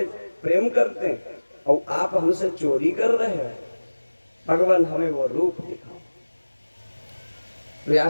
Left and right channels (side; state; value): both; inverted; correlation -1.00